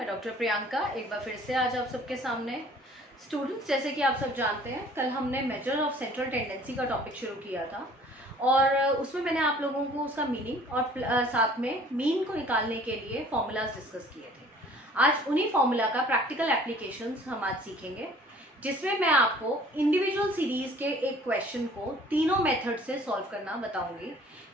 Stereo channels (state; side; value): normal; both; correlation 0.52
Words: doctor Priyanka एक बार फिर से आज आप सबके सामने। स्टूडेंट्स, जैसे कि आप सब जानते हैं, कल हमने मेजर ऑफ सेंट्रल टेंडेंसी का टॉपिक शुरू किया था और उसमें मैंने आप लोगों को उसका मीनिंग और साथ में मीन को निकालने के लिए फॉर्मूलाज डिस्कस किए थे। आज उन्हीं फॉर्मूला का प्रैक्टिकल एप्लीकेशंस हम आज सीखेंगे, जिसमें मैं आपको इंडिविजुअल सीरीज के एक क्वेश्चन को तीनों मेथड से सॉल्व करना बताऊंगी